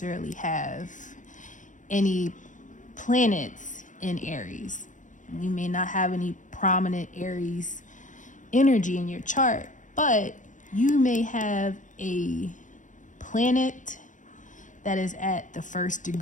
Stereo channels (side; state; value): right; late; 0.37 ms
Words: have any planets in Aries. You may not have any prominent Aries energy in your chart, but you may have a planet that is at the first